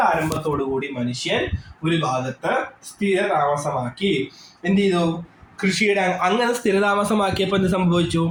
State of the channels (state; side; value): identical; both; correlation 1.00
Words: ആരംഭത്തോടുകൂടി മനുഷ്യൻ ഒരു ഭാഗത്ത് സ്ഥിരതാമസമാക്കി. എന്ത് ചെയ്തു, കൃഷിയുടെ അങ്ങനെ സ്ഥിരതാമസമാക്കിയപ്പോൾ എന്ത് സംഭവിച്ചു,